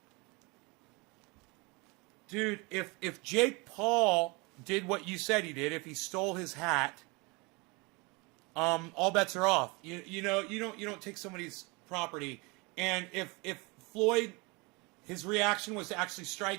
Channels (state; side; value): quieter; left; 27.3 dB